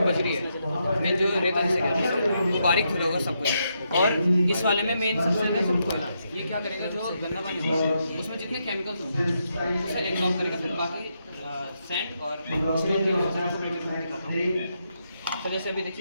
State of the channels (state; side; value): inverted; both; correlation -0.81